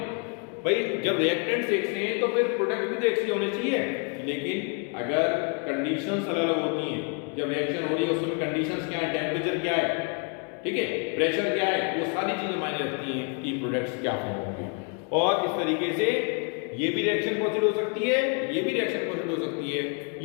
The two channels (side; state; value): right; quieter; 38.4 dB